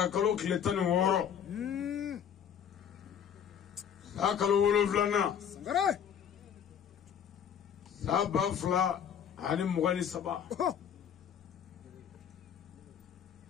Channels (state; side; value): quieter; right; 8.4 dB